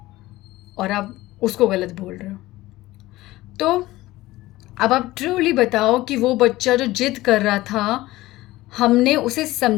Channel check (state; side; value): quieter; right; 17.7 dB